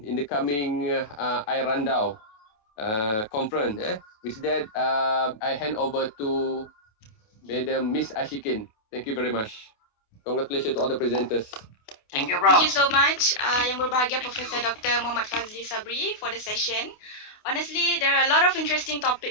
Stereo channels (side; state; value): right; late; 28 ms